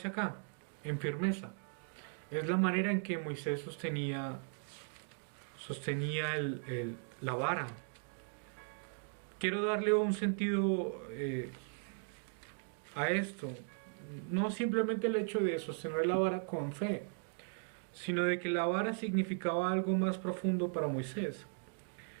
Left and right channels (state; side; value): silent; left; 53 dB below the other